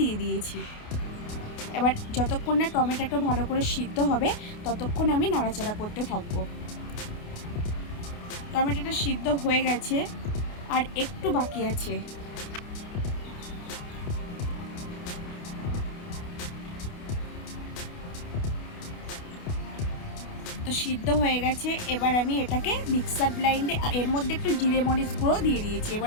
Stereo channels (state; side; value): late; right; 28 ms